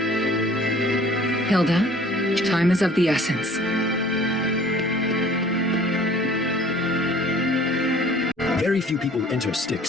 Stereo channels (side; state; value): both; normal; correlation 0.52